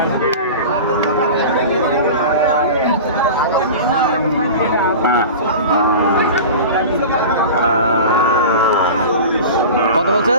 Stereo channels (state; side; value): inverted; both; correlation -0.33